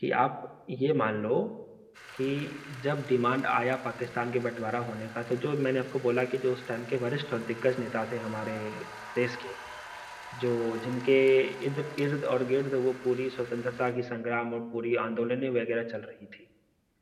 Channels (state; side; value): identical; both; correlation 1.00